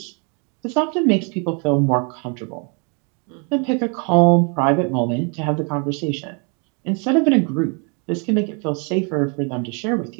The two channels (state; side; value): quieter; left; 36.4 dB